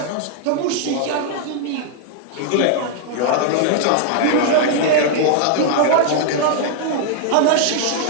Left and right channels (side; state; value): both; different; correlation 0.00